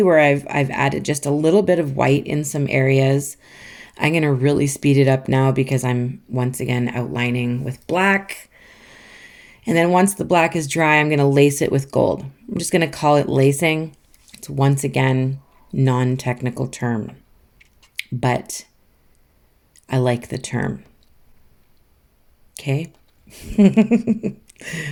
where I've added just a little bit of white in some areas. I'm going to really speed it up now because I'm once again outlining with black. And then once the black is dry, I'm going to lace it with gold. I'm just going to call it lacing. It's once again non-technical term, but I like the term. Okay.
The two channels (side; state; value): both; identical; correlation 1.00